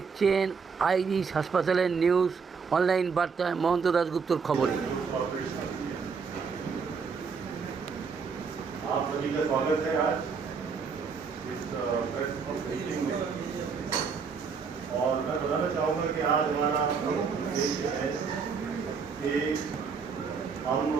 আইরিশ হাসপাতালের নিউজ অনলাইন বার্তায় মহন্ত দাশগুপ্তর খবরে। आप सभी का स्वागत है आज इस प्रेस ब्रीफिंग में। और मैं बताना चाहूँगा कि आज हमारा उद्देश्य है कि हम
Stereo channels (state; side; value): quieter; left; 5.6 dB